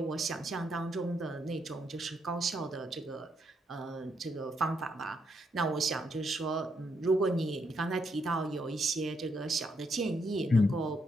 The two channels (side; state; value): both; normal; correlation 0.77